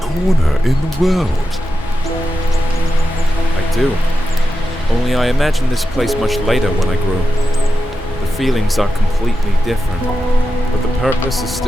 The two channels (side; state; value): both; normal; correlation 0.90